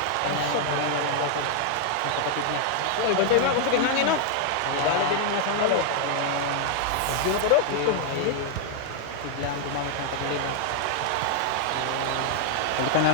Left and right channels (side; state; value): both; different; correlation 0.00